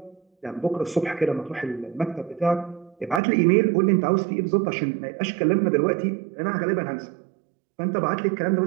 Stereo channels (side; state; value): left; drops out; at 3.2 s